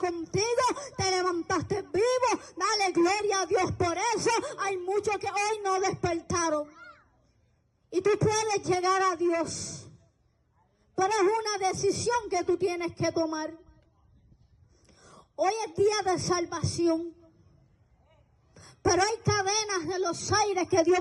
Te levantaste vivo. Dale gloria a Dios por eso. Hay muchos que hoy no despertaron. Y tú puedes llegar a Dios. Pero es una decisión que tú tienes que tomar. Hoy es día de salvación. Pero hay cadenas de los aires que Dios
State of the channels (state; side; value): identical; both; correlation 1.00